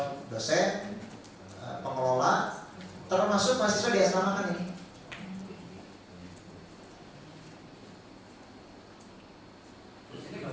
dosen, pengelola, termasuk mahasiswa diasramakan ini.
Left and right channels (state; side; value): identical; both; correlation 1.00